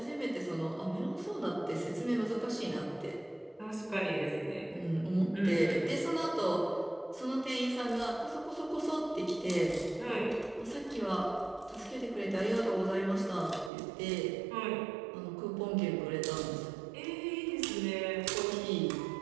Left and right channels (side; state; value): left; drops out; at 13.7 s